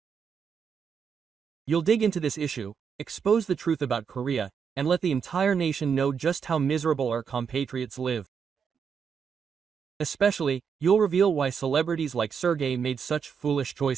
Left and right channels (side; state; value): left; quieter; 6.7 dB